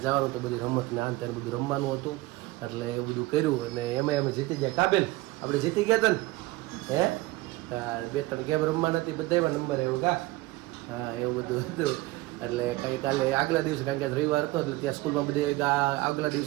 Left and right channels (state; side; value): quieter; left; 19.7 dB